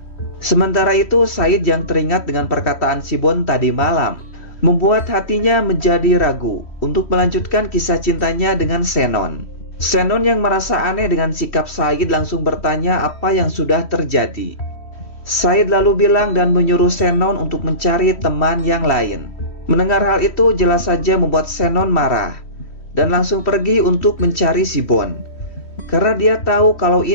Sementara itu, Said yang teringat dengan perkataan Sibon tadi malam membuat hatinya menjadi ragu untuk melanjutkan kisah cintanya dengan Shannon. Shannon yang merasa aneh dengan sikap Said langsung bertanya apa yang sudah terjadi. Said lalu bilang dan menyuruh Shannon untuk mencari teman yang lain. Mendengar hal itu jelas saja membuat Shannon marah dan langsung pergi untuk mencari Sibon, karena dia tahu kalau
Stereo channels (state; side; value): late; right; 3.1 ms